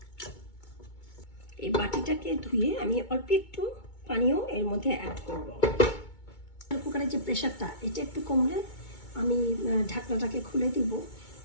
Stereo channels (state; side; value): late; right; 2.2 ms